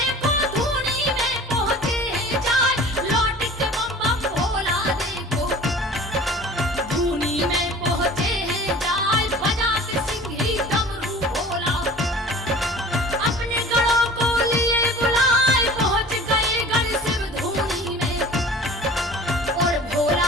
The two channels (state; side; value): normal; both; correlation 0.43